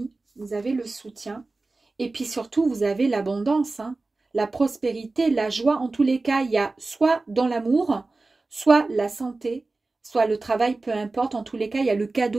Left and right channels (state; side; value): quieter; left; 3.4 dB